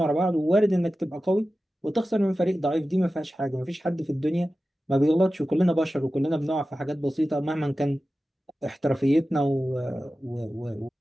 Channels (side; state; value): both; normal; correlation 0.94